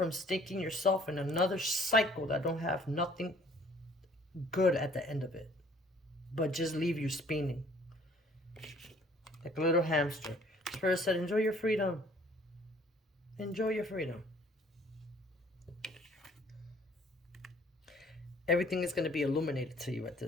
sticking yourself in another cycle that don't have nothing good at the end of it, but just leave you spinning like a little hamster. Spirit said, enjoy your freedom. Enjoy your freedom. Everything is going to be illuminated to you at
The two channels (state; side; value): normal; both; correlation 0.57